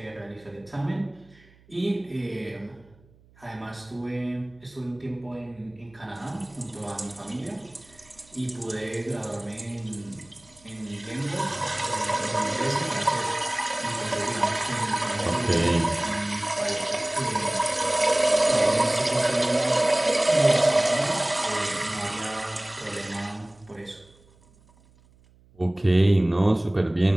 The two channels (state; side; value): noise; right; hum, 29 dB below the sound